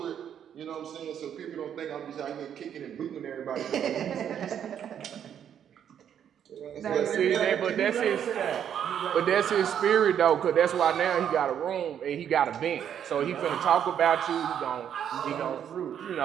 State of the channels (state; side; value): quieter; left; 9.1 dB